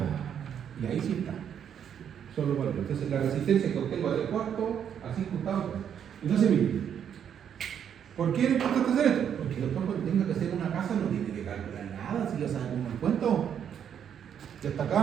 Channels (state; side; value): quieter; left; 8.7 dB